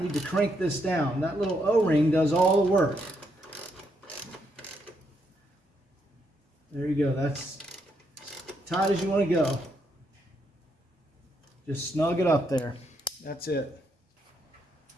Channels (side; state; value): both; normal; correlation 0.77